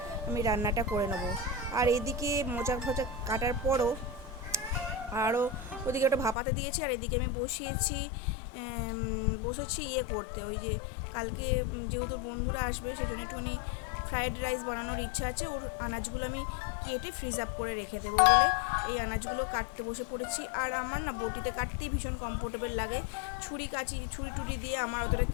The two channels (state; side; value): drops out; right; at 6.4 s